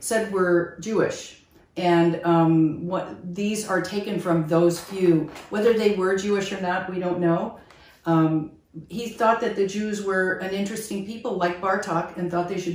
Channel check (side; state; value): both; identical; correlation 1.00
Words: were Jewish, and these are taken from those few. Whether they were Jewish or not, we don't know. He thought that the Jews were an interesting people like Bartok and thought they